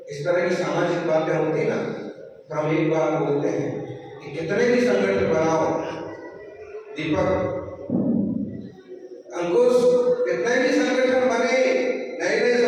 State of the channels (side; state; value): both; identical; correlation 1.00